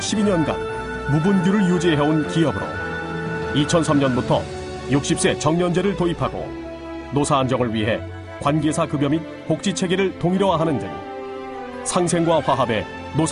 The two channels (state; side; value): identical; both; correlation 1.00